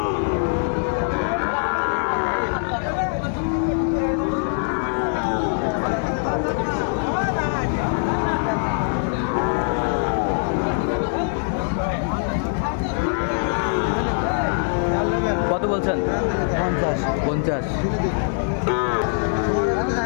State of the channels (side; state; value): right; silent; 63 dB below the other